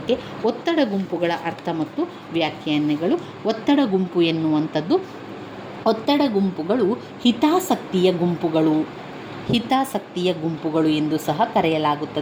ಒತ್ತಡ ಗುಂಪುಗಳ ಅರ್ಥ ಮತ್ತು ವ್ಯಾಖ್ಯಾನಗಳು. ಒತ್ತಡ ಗುಂಪು ಎನ್ನುವಂಥದ್ದು, ಒತ್ತಡ ಗುಂಪುಗಳು ಹಿತಾಸಕ್ತಿಯ ಗುಂಪುಗಳು ಎಂದು ಸಹ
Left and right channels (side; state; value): both; identical; correlation 1.00